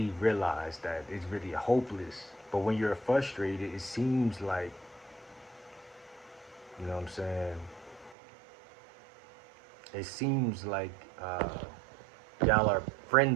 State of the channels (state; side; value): drops out; left; at 8.2 s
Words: realize that it's really hopeless. But when you're frustrated, it seems like, you know what I'm saying? It seems like y'all are